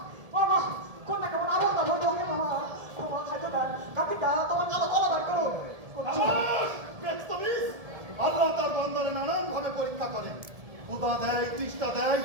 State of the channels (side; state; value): left; late; 1.7 ms